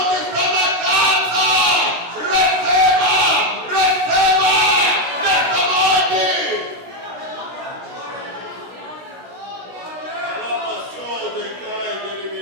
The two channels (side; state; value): left; late; 16 ms